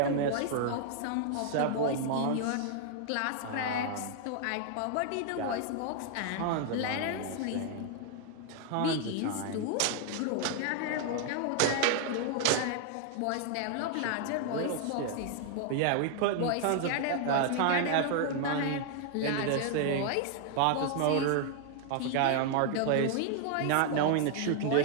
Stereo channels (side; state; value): both; different; correlation 0.00